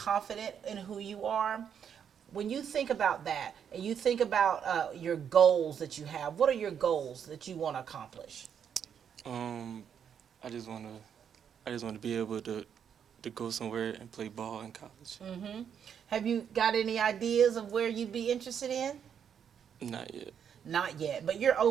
in who you are. When you think about that, and you think about your goals that you have, what are your goals that you want to accomplish? I just want to be able to go somewhere and play ball in college. Mm-hmm. Have you got any ideas of where you'd be interested in? Not yet. Not yet, but you're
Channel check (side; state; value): left; quieter; 8.0 dB